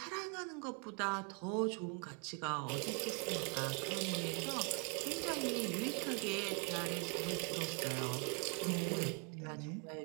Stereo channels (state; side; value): quieter; left; 37.9 dB